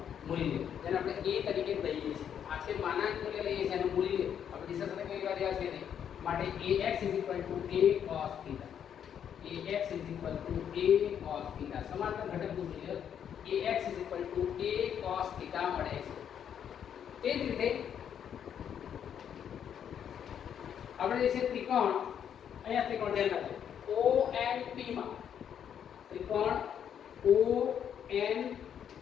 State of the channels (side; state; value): right; quieter; 8.8 dB